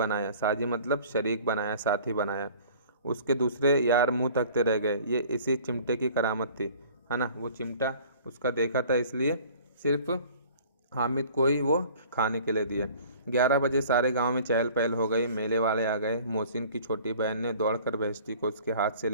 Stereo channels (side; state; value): both; inverted; correlation -0.49